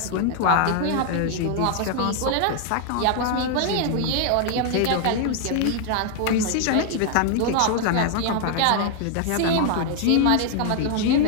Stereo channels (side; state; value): both; different; correlation 0.00